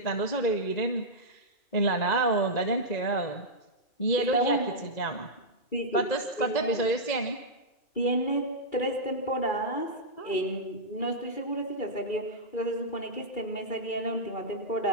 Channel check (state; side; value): late; right; 2.0 ms